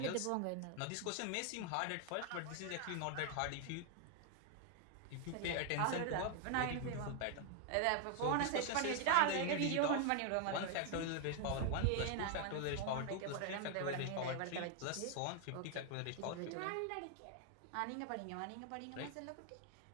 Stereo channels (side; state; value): both; different; correlation 0.00